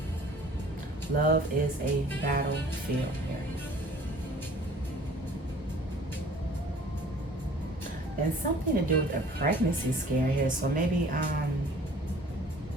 Love is a battlefield here. And something to do with a pregnancy scare here. So maybe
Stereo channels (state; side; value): normal; both; correlation 0.50